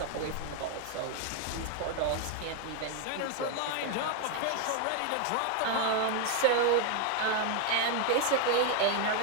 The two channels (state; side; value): different; both; correlation 0.01